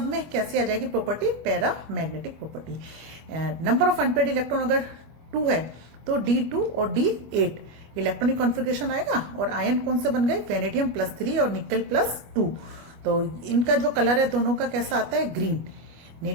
में कैसे आ जाएगी property, paramagnetic property. Number of unpaired electron अगर 2 है तो D2 और D8 इलेक्ट्रॉनिक कॉन्फ़िगरेशन आएगा। और आयन कौन से बन गए, वेनेडियम +3 और निकल +2। तो इनका जो कलर है दोनों का कैसा आता है, ग्रीन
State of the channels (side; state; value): left; late; 25 ms